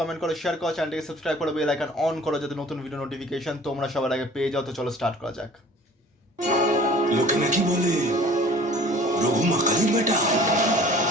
কমেন্ট করো, শেয়ার করো, চ্যানেলটাকে সাবস্ক্রাইব করো, বেল আইকন অন করো, যাতে নতুন ভিডিও নোটিফিকেশন তোমরা সবার আগে পেয়ে যাও। তো চলো স্টার্ট করা যাক। লোকে নাকি বলে রঘু মা কালীর বেটা।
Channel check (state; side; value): normal; both; correlation 0.49